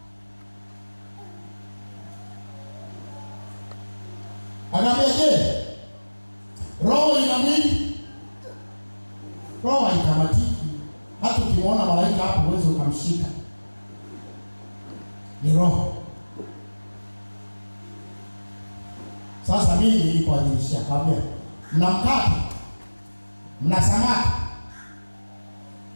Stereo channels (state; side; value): inverted; both; correlation -1.00